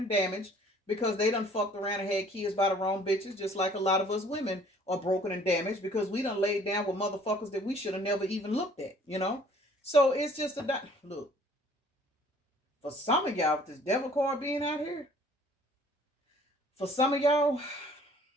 damaged because they done fucked around and had kids by the wrong bitches, just like a lot of us women are broken and damaged because we done laid down with motherfuckers that we should have never even looked at, you know? So it's just look, for some of y'all, with this devil card being out here, for some of y'all,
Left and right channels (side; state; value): both; normal; correlation 0.55